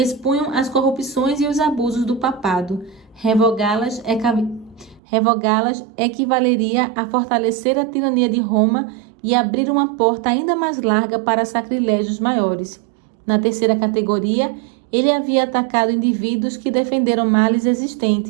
as corrupções e os abusos do papado. Revogá-las equivaleria a fortalecer a tirania de Roma e abrir uma porta ainda mais larga para sacrilégios maiores. Na terceira categoria, ele havia atacado indivíduos que defenderam males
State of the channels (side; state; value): left; drops out; at 5.0 s